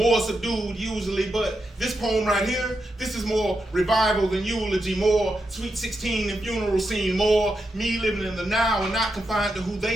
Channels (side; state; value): both; normal; correlation 0.85